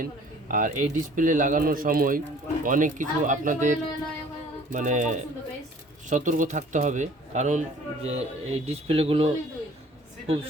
আর এই ডিসপ্লে লাগানোর সময় অনেক কিছু আপনাদের মানে সতর্ক থাকতে হবে, কারণ যে এই ডিসপ্লেগুলো খুব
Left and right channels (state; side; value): normal; both; correlation 0.52